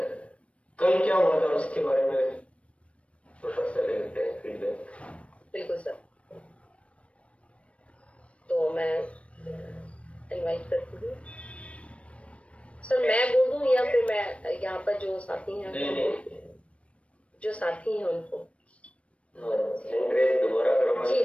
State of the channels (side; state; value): right; late; 0.062 ms